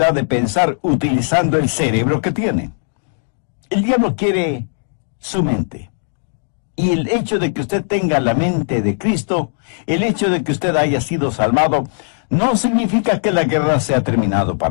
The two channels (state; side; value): silent; right; digital silence